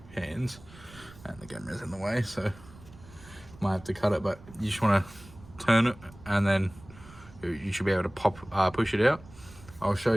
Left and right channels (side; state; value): right; noise; rumble, 20 dB below the sound